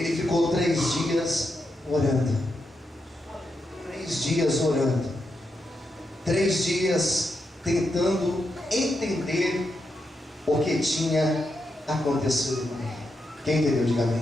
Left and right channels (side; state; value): both; normal; correlation 0.85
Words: ficou 3 dias orando. 3 dias orando. 3 dias tentando entender o que tinha acontecido com ele. Quem entendeu? Diga